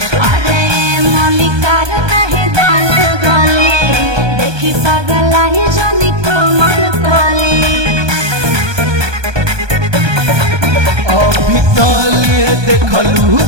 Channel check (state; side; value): late; left; 1.2 ms